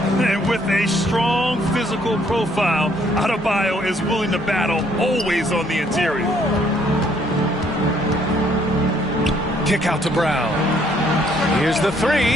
And with a strong physical profile, Adebayo is willing to battle, always on the interior. Kick out to Brown. Here's the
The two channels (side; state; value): both; normal; correlation 0.66